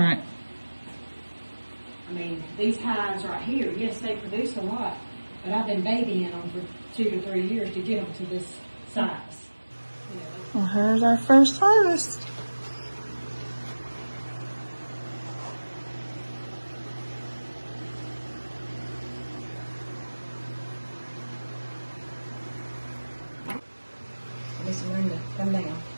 I mean, these hives right here, yes, they produce a lot, but I've been babying them for 2 to 3 years to get them to this size. Well, here's our first harvest. Miss Linda, come down.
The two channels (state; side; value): inverted; both; correlation -1.00